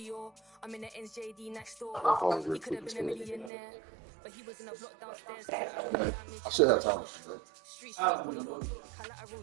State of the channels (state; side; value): drops out; left; at 3.5 s